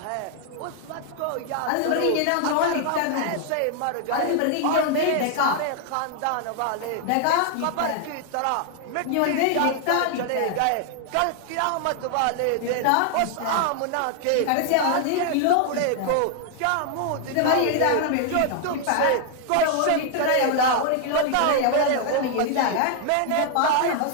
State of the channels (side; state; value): both; different; correlation 0.00